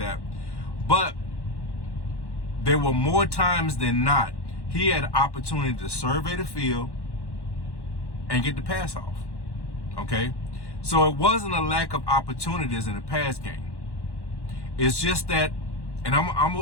But there were more times than not he had an opportunity to survey the field and get the pass off, okay? So it wasn't a lack of opportunities in the pass game. It's just that, and I'm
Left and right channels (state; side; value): late; right; 1.1 ms